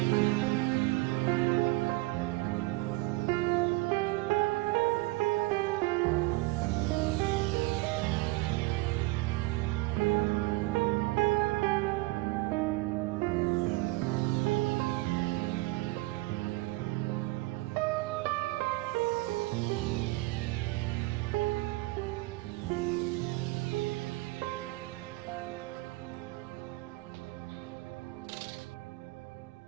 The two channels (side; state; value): left; quieter; 21.1 dB